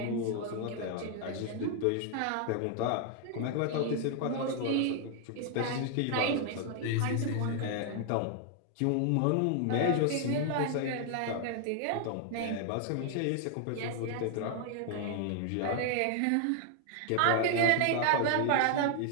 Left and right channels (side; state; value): both; different; correlation 0.00